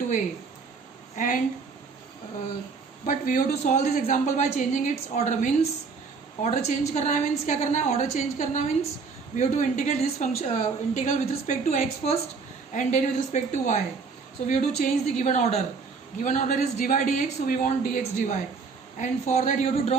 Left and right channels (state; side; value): quieter; left; 4.9 dB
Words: a. And but we have to solve this example by changing its order. Means order change करना है, means क्या करना है, order change करना means we have to integrate this function integral with respect to x first and then with respect to y. So we have to change the given order. Given order is dy dx, so we want dx dy, and for that you have to